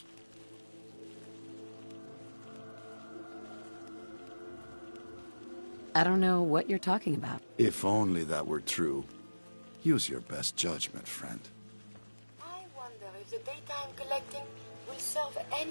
I don't know what you're talking about. If only that were true. Use your best judgment, friend. I wonder if the data I'm collecting will serve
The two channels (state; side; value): inverted; both; correlation -1.00